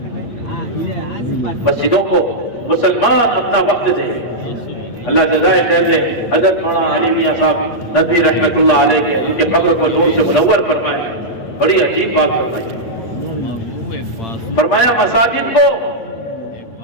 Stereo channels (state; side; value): late; right; 8.4 ms